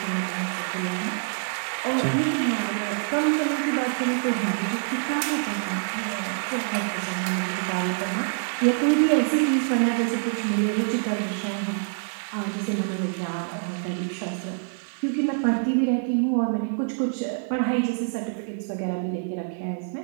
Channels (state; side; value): silent; left; digital silence